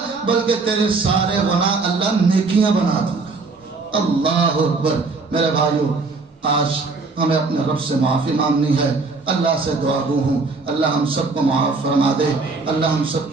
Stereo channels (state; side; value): quieter; left; 4.0 dB